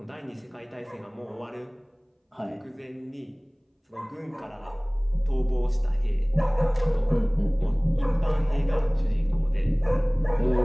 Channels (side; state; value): both; identical; correlation 1.00